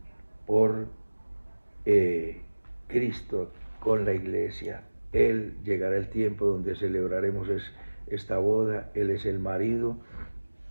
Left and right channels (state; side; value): inverted; both; correlation -1.00